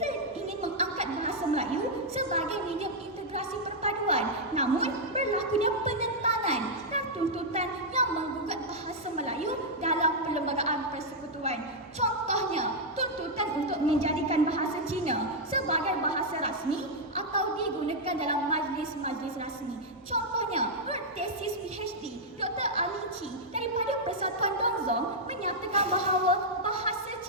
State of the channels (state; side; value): normal; both; correlation -0.04